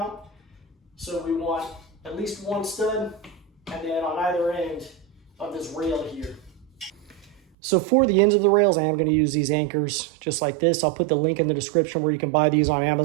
So we want at least one stud, and then on either end of this rail here. So for the ends of the rails, I am going to use these anchors just like this. I'll put the link in the description where you can buy these on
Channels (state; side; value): drops out; left; at 7.4 s